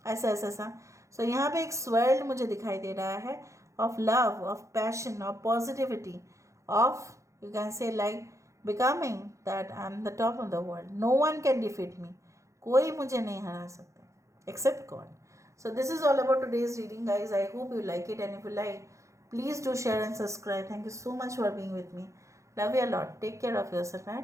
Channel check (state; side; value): late; left; 0.15 ms